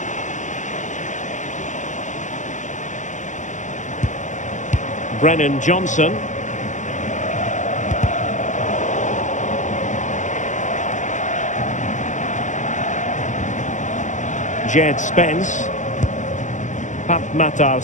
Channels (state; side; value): late; right; 0.36 ms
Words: Brennan Johnson. Jed Spence. Pap Matar